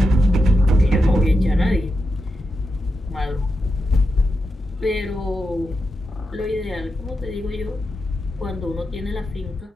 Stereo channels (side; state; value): both; normal; correlation 0.87